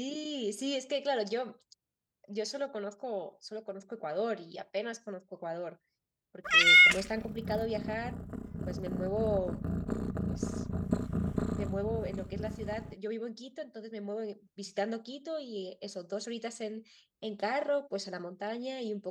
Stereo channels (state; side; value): identical; both; correlation 1.00